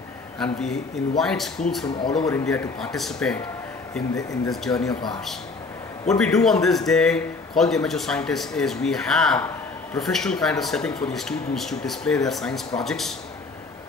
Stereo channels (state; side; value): quieter; right; 3.9 dB